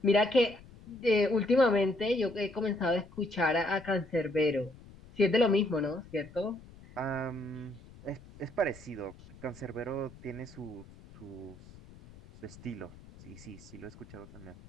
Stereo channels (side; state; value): left; noise; rumble, 20 dB below the sound